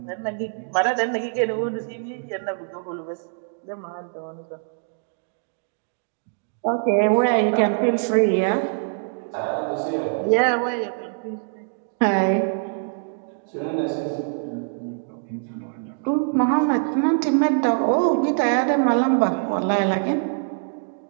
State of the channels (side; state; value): left; silent; digital silence